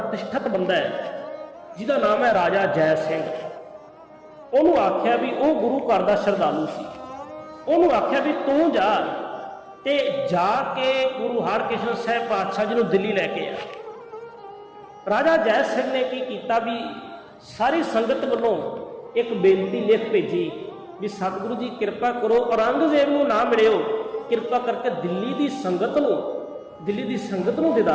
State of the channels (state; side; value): identical; both; correlation 1.00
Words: ਬੰਦਾ ਹੈ ਜਿਹਦਾ ਨਾਮ ਹੈ ਰਾਜਾ ਜੈ ਸਿੰਘ। ਉਹਨੂੰ ਆਖਿਆ ਵੀ ਉਹ ਗੁਰੂ ਘਰ ਦਾ ਸ਼ਰਧਾਲੂ ਸੀ। ਉਹਨੂੰ ਆਖਿਆ ਵੀ ਤੂੰ ਜਾ ਤੇ ਜਾ ਕੇ ਗੁਰੂ ਹਰਕ੍ਰਿਸ਼ਨ ਸਾਹਿਬ ਪਾਤਸ਼ਾਹ ਜੀ ਨੂੰ ਦਿੱਲੀ ਲੈ ਕੇ ਆ। ਰਾਜਾ ਜੈ ਸਿੰਘ ਨੇ ਕੀ ਕੀਤਾ ਵੀ ਸਾਰੀ ਸੰਗਤ ਵੱਲੋਂ ਇੱਕ ਬੇਨਤੀ ਲਿਖ ਭੇਜੀ ਵੀ ਸਤਿਗੁਰੂ ਜੀ ਕਿਰਪਾ ਕਰੋ ਔਰੰਗਜ਼ੇਬ ਨੂੰ ਨਾ ਮਿਲਿਓ, ਕਿਰਪਾ ਕਰਕੇ ਦਿੱਲੀ ਦੀ ਸੰਗਤ ਨੂੰ